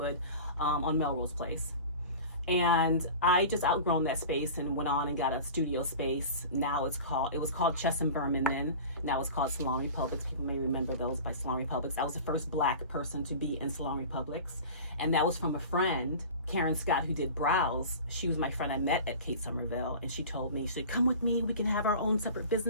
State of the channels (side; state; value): both; inverted; correlation -0.36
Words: on Melrose Place. And I just outgrown that space and went on and got a studio space. Now it was called Chess and Berman then. Now it's called Salon Republics. People may remember those by Salon Republics. I was the first Black person to be in Salon Republics. And that was from a friend, Karen Scott, who did brows. She was my friend I met at Kate Somerville. And she told me, she said, come with me. We can have our own separate